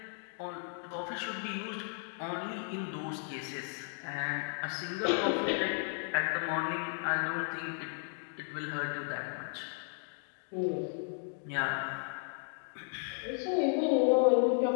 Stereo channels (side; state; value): right; silent; 55 dB below the other